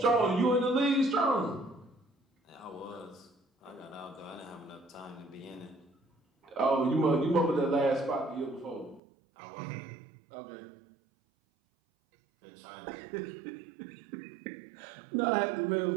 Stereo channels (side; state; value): left; drops out; at 9.0 s